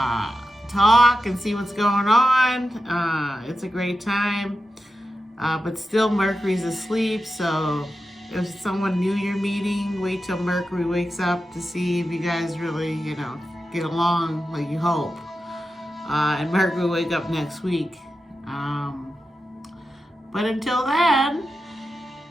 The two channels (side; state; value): both; normal; correlation 0.91